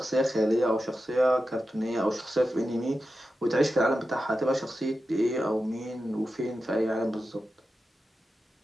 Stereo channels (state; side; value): normal; both; correlation 0.91